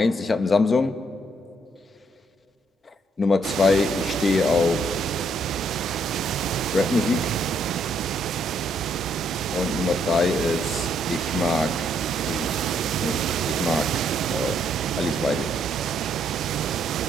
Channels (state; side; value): normal; both; correlation 0.71